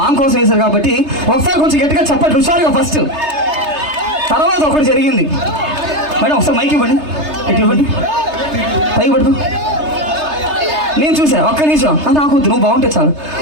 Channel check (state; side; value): late; left; 3.3 ms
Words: కోసం వేశారు కాబట్టి ఒకసారి కొంచెం గట్టిగా చెప్పండి హుషారుగా ఫస్ట్. తర్వాత ఒకటి జరిగింది మేడం, ఒకసారి మైక్ ఇవ్వండి, ఇటు ఇవ్వండి, పై పడుకో. నేను చూసా ఒక్క నిమిషం నాకు వద్దు, నువ్వు బాగుంటే చాలు.